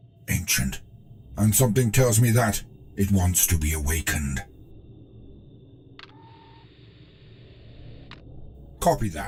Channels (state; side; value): identical; both; correlation 1.00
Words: Ancient. And something tells me that it wants to be awakened. Copy